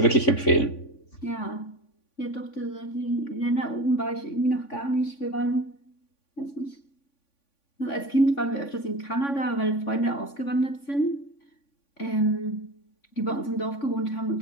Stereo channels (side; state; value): right; late; 3.5 ms